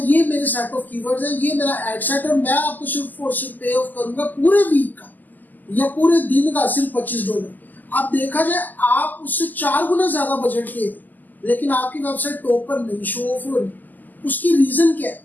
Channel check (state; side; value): late; right; 0.085 ms